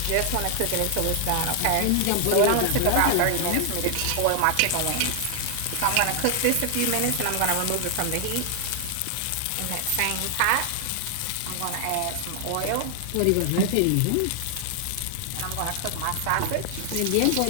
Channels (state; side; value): different; both; correlation 0.00